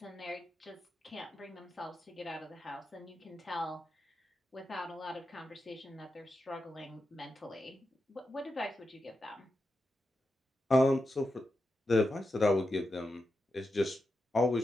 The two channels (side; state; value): both; normal; correlation 0.88